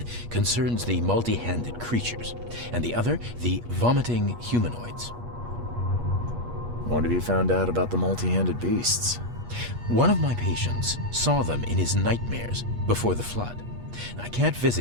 concerns the multi-handed creatures, and the other the vomiting humanoids. What have you found out about the multi-handed beasts? One of my patients saw them in his nightmares before the flood. I can't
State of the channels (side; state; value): left; late; 8.4 ms